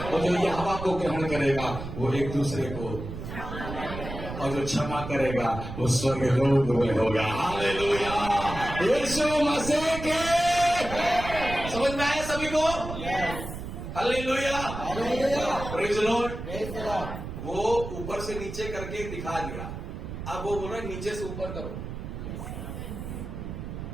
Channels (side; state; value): right; noise; rumble, 8 dB below the sound